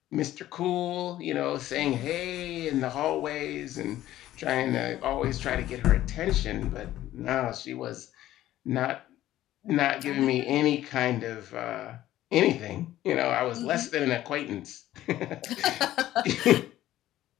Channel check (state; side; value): quieter; right; 14.0 dB